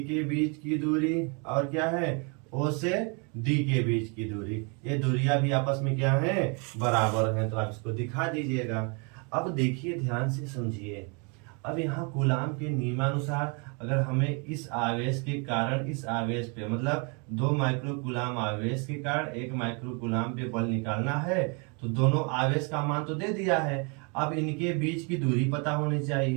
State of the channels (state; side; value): quieter; left; 34.2 dB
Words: के बीच की दूरी, और क्या है ओ से डी के बीच की दूरी। ये दूरियां भी आपस में क्या है, बराबर हैं, तो आप इसको दिखा दीजिएगा। अब देखिए ध्यान से समझिए, अब यहाँ कूलाम के नियमानुसार अगर हमें इस आवेश के कारण इस आवेश पे, मतलब 2 माइक्रो कूलाम आवेश के कारण 1 माइक्रो कूलाम पे बल निकालना है, तो दोनों आवेश का मान तो दे दिया है, अब इनके बीच की दूरी पता होनी